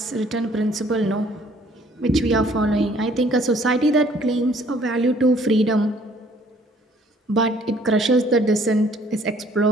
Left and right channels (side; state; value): both; normal; correlation 0.60